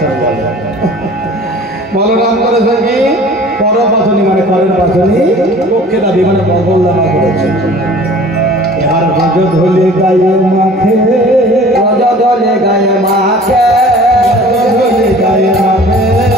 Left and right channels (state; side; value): normal; both; correlation 0.46